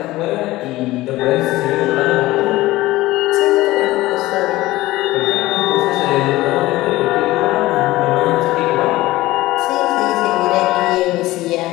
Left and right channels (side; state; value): right; quieter; 17.9 dB